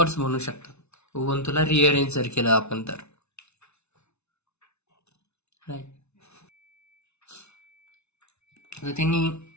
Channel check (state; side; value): late; right; 0.81 ms